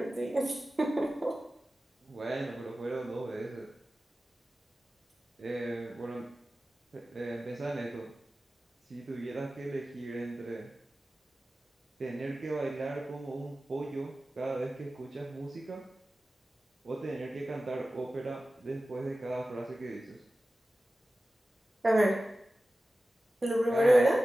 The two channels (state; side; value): normal; both; correlation 0.95